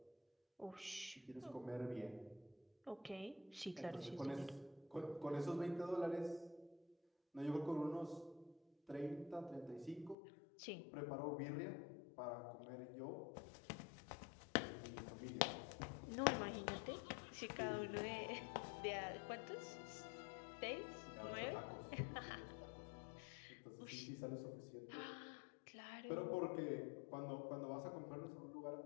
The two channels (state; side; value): drops out; right; at 10.2 s